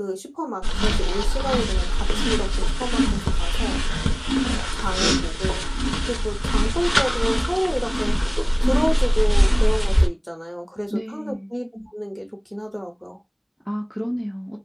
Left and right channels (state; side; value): identical; both; correlation 1.00